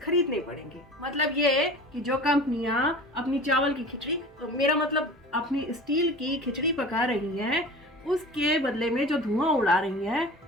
पड़ेंगे। मतलब ये कि जो कंपनियां अपनी चावल की खिचड़ी, तो मेरा मतलब अपनी स्टील की खिचड़ी पका रही हैं, उसके बदले में जो धुआं उड़ा रही हैं,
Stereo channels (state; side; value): normal; both; correlation 0.38